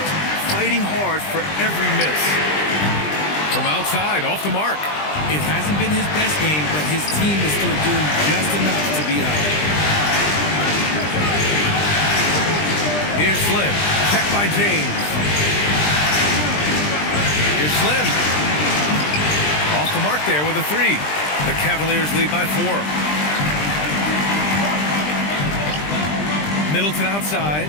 fighting hard for every miss. From outside, off the mark. It hasn't been his best game, but his team is still doing just enough to be up. Here's Slim. Check by James. Here's Slim. Off the mark there with a 3. The Cavaliers lead by 4. Middleton outside.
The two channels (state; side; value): late; right; 20 ms